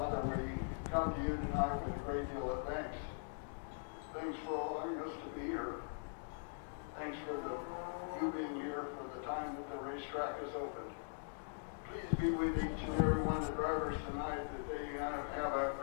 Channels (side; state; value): right; silent; digital silence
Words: come to you tonight with a great deal of thanks. Thanks for allowing us to be here. Thanks for you being here for the time that the racetrack is open. Please be with each and every one of the drivers tonight that they have a